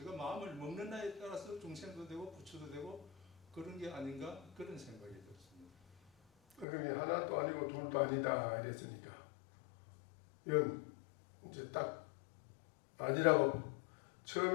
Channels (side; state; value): right; drops out; at 6.7 s